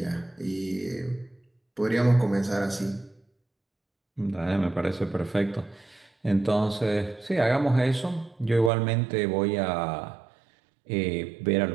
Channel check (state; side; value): drops out; left; at 8.7 s